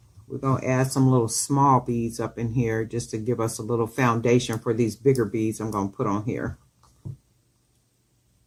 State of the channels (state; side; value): identical; both; correlation 1.00